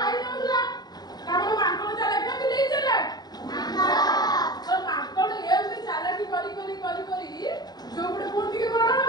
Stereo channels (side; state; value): right; late; 0.20 ms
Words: ଦଉଥିଲା। କାରଣ ମାଙ୍କଡ ଚାଲାକ ନା ବିଲେଇ ଚାଲାକ? ତ ମାଙ୍କଡ ଏମିତି ଚାଲାକି କରି ଯୋଉ ପଟେ ପୁଣି ଟିକେ ବଡ